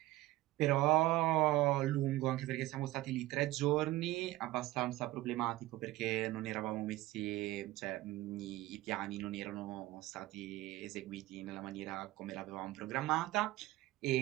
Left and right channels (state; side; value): quieter; left; 17.2 dB